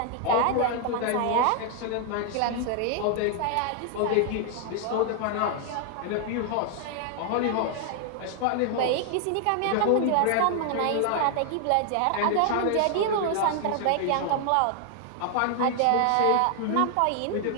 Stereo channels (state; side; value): different; both; correlation 0.00